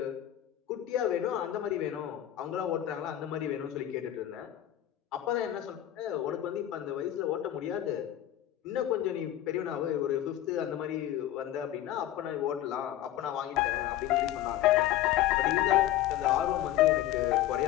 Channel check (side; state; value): right; quieter; 12.8 dB